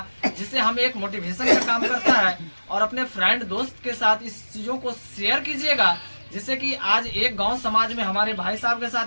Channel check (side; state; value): both; inverted; correlation -1.00